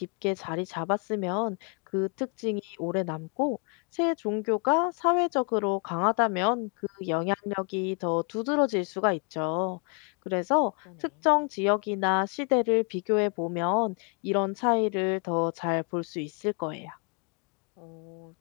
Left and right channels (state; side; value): quieter; right; 37.5 dB